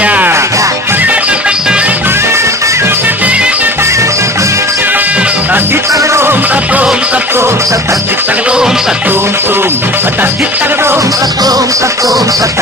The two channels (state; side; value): normal; both; correlation 0.39